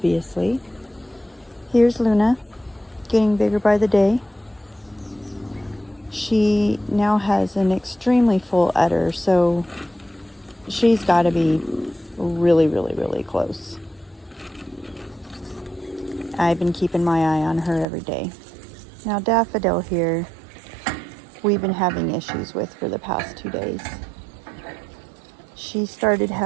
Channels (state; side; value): drops out; left; at 17.9 s